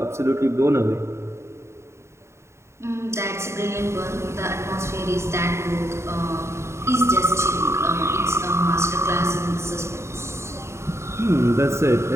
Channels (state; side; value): late; left; 0.13 ms